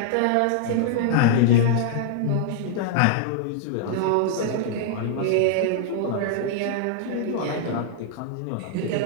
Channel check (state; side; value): different; both; correlation -0.01